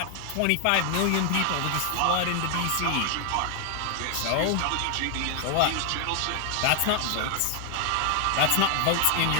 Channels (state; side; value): different; both; correlation 0.00